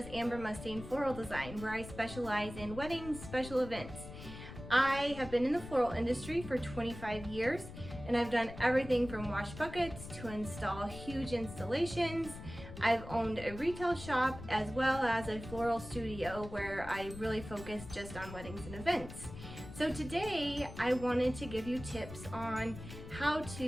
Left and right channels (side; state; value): left; noise; rumble, 12 dB below the sound